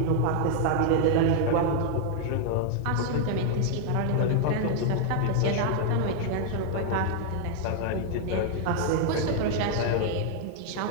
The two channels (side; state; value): both; different; correlation 0.00